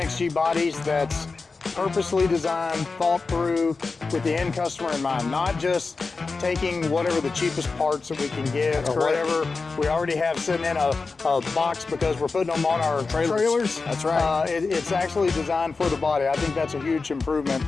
bodies that's purposely designed, thought through with the end customer in mind, not just taking whatever the cheapest parts that we can get or whatever we already have sitting in a box because we're putting them on our trailers. That's right. It's actually designed for the body. I think that's a huge improvement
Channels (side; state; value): right; quieter; 4.2 dB